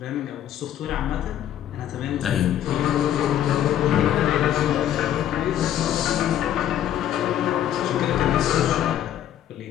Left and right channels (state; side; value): quieter; right; 11.1 dB